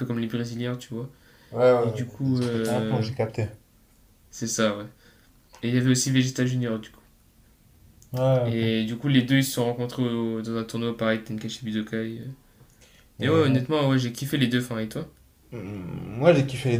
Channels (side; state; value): both; identical; correlation 1.00